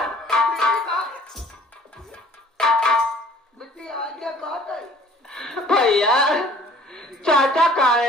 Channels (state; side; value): normal; both; correlation 0.53